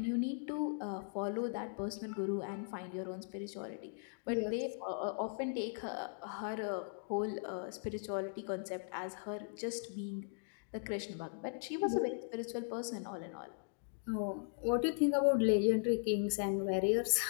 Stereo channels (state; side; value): silent; right; digital silence